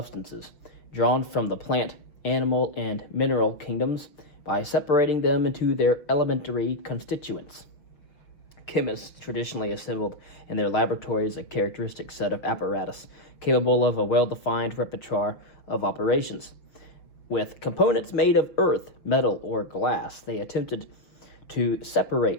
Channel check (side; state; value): right; late; 6.2 ms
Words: drawn from the plant, animal, and mineral kingdoms by separating them into their elementary constituents. Chemists traditionally assembled in their laboratories a characteristic set of apparatus capable of a well-defined repertoire of operations. With components made of earth, metal, or glass, they attempted to